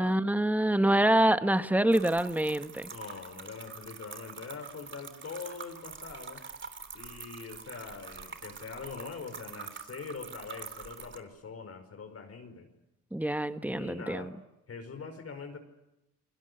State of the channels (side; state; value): both; normal; correlation 0.84